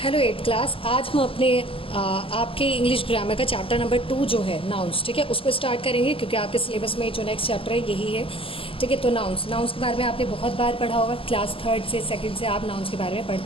Hello eight class. आज हम अपने आपके इंग्लिश ग्रामर का चैप्टर नंबर 2 जो है नाउन्स, ठीक है, उसको स्टार्ट करेंगे क्योंकि आपके सिलेबस में जो नेक्स्ट चैप्टर है यही है। ठीक है, तो नाउन्स के बारे में आपने बहुत बार पढ़ा होगा। क्लास 3 से 2 से आप नाउन्स के बारे में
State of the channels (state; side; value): late; right; 0.26 ms